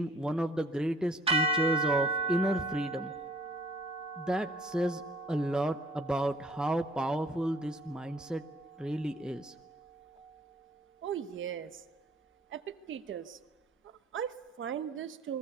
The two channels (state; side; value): normal; both; correlation 0.56